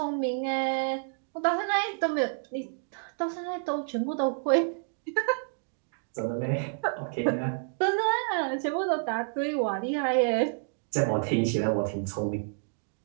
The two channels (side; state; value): left; silent; digital silence